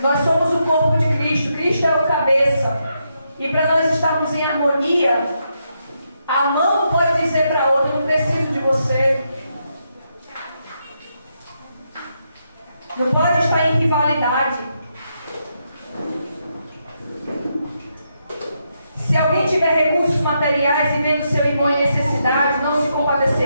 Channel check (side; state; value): both; inverted; correlation -0.81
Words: Nós somos o corpo de Cristo. Cristo é o cabeça. E para nós estarmos em harmonia, a mão não pode dizer para a outra: não preciso de você. Não pode estar em rivalidade. Se alguém tiver recursos materiais e vendo seu irmão em necessidade, não se